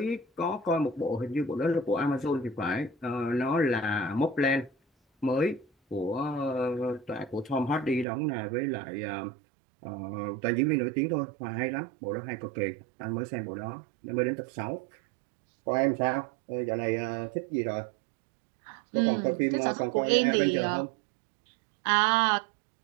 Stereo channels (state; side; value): drops out; left; at 8.1 s